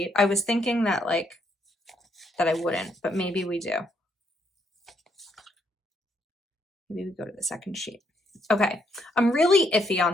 I was thinking that that I wouldn't, but maybe we do. Maybe we go to the second sheet. Okay, I'm really iffy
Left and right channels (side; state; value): both; normal; correlation 0.73